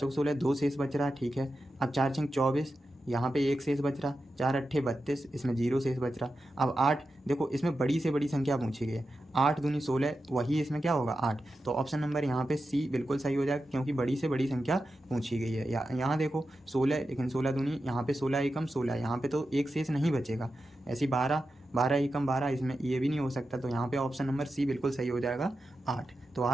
16, 2 शेष बच रहा है, ठीक है। अब 4 छंग 24, यहाँ पे 1 शेष बच रहा, 4 अट्ठे 32, इसमें 0 शेष बच रहा। अब 8, देखो इसमें बड़ी से बड़ी संख्या पूछी गई है, 8 दूनी 16, वही इसमें क्या होगा 8। तो ऑप्शन नंबर यहाँ पे सी बिल्कुल सही हो जाएगा, क्योंकि बड़ी से बड़ी संख्या पूछी गई है। यहाँ देखो 16, लेकिन 16 दूनी, यहाँ पे 16 एकम 16, यहाँ पे तो एक शेष नहीं बचेगा। ऐसी 12 12 एकम 12, इसमें ये भी नहीं हो सकता। तो यहाँ पे ऑप्शन नंबर सी बिल्कुल सही हो जाएगा 8। तो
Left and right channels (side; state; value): both; normal; correlation 0.90